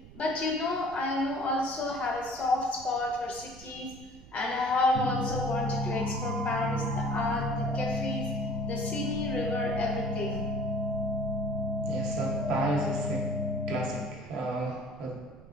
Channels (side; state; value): right; noise; rumble, 20 dB below the sound